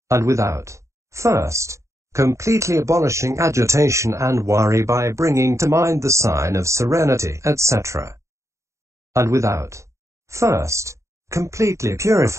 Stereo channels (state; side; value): late; left; 0.14 ms